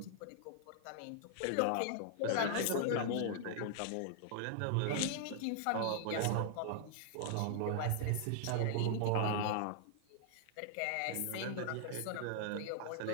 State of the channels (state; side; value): different; both; correlation -0.01